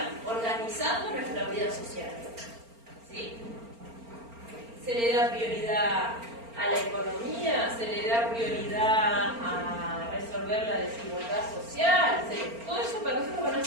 organizando nuestra vida social, ¿sí? Se le da prioridad a la economía, se le da prioridad a resolver la desigualdad social, todo eso para nosotros van a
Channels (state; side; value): late; left; 4.4 ms